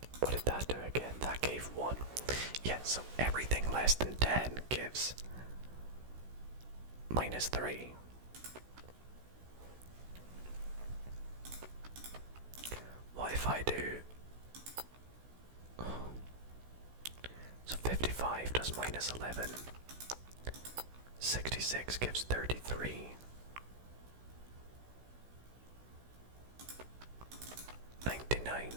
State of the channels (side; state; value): left; late; 16 ms